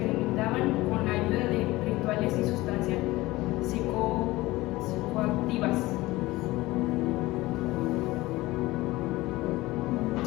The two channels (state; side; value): quieter; right; 19.2 dB